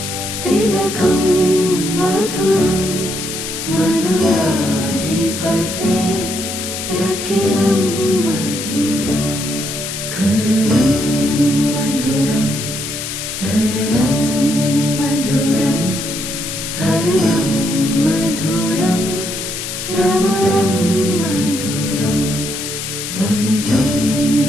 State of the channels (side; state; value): left; noise; hiss, 6 dB below the sound